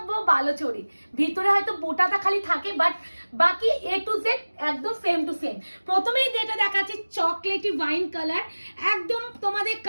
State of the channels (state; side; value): inverted; both; correlation -1.00